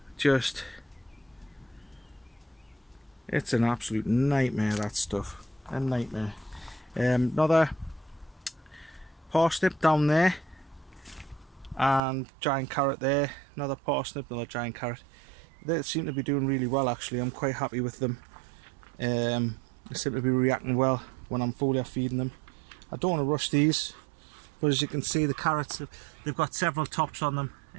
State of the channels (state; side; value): drops out; left; at 12.0 s